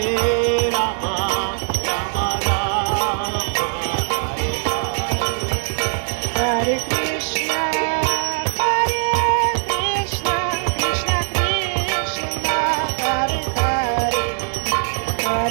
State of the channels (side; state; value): left; silent; digital silence